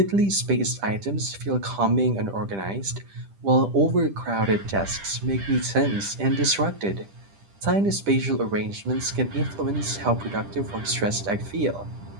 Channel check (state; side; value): late; left; 10 ms